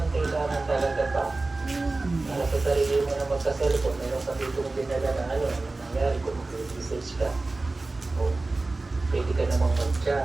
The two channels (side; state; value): left; quieter; 3.3 dB